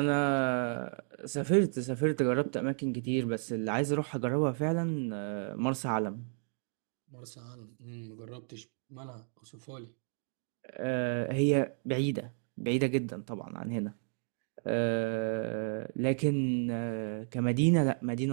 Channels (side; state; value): left; silent; 56 dB below the other